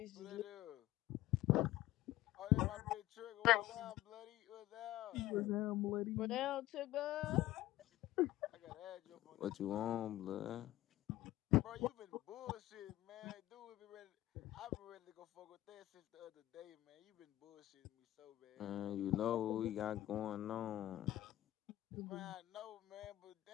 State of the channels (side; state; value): right; quieter; 15.3 dB